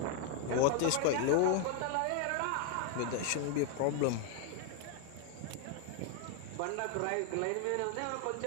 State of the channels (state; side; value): different; both; correlation 0.00